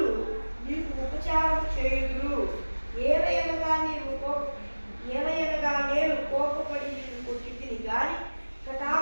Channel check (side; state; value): both; inverted; correlation -1.00